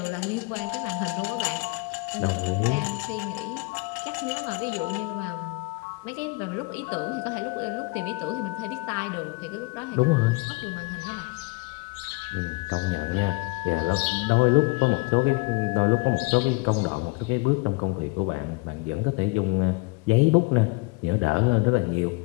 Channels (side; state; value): right; quieter; 27.6 dB